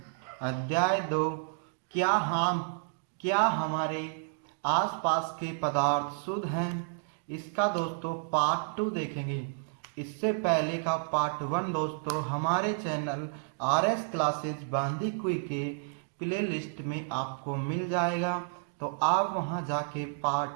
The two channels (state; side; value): silent; left; digital silence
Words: अध्याय 2 क्या हमारे आसपास के पदार्थ शुद्ध हैं, इसका दोस्तों पार्ट 2 देखेंगे। इससे पहले का पार्ट 1 दोस्तों हमारे चैनल आरएस क्लासेज बांदीकुई के प्ले लिस्ट में आपको मिल जाएगा, तो आप वहां जाके